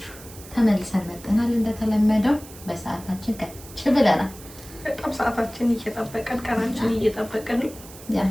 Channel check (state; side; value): noise; right; hiss, 18 dB below the sound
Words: ተመልሰን መጥተናል። እንደተለመደው በሰዓታችን ከች ብለናል። በጣም ሰዓታችን እየጠበቀን ቀናችን እየጠበቀን ያ